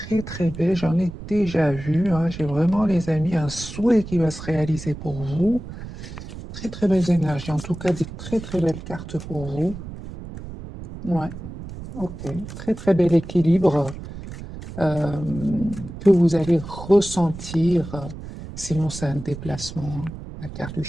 très belles, j'en ai déjà vu, hein. J'ai vraiment, les amis, un souhait qui va se réaliser pour vous. Très très belles énergies, en tout cas des très très belles cartes pour vous. Ouais. Ok, très très bel équilibre que vous allez ressentir, sinon c'est un déplacement, hein, la carte du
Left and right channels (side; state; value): right; noise; rumble, 11 dB below the sound